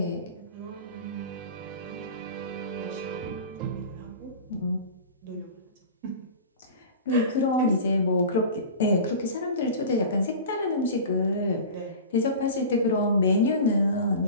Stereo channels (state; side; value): inverted; both; correlation -0.34